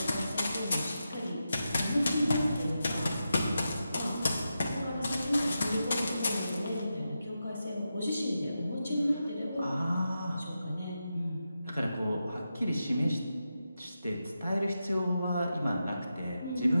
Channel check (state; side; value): inverted; both; correlation -0.88